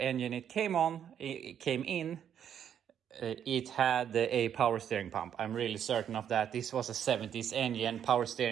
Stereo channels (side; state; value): left; quieter; 9.1 dB